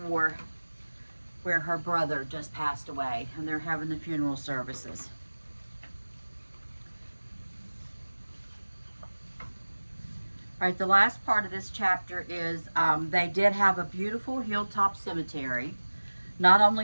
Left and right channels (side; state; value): both; inverted; correlation -1.00